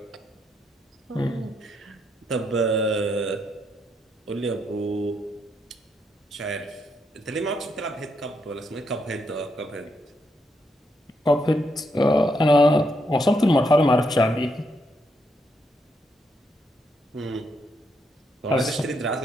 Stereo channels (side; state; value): both; normal; correlation 0.78